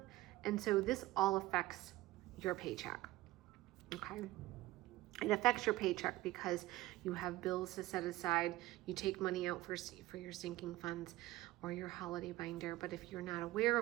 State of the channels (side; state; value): left; quieter; 17.4 dB